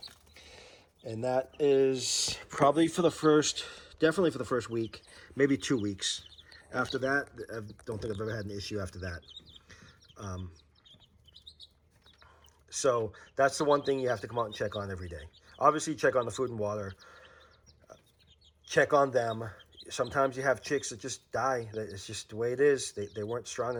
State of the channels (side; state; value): both; identical; correlation 1.00